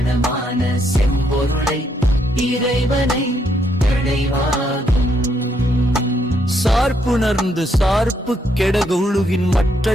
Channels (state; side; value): normal; both; correlation 0.75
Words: செம்பொருளை இறைவனை அடைவாகும். சார்புணர்ந்து சார்பு கெடக உழுகின்